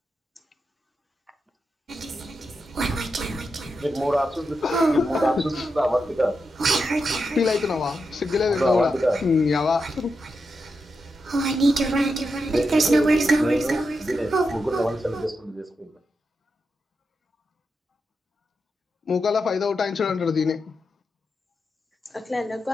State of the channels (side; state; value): both; normal; correlation 0.87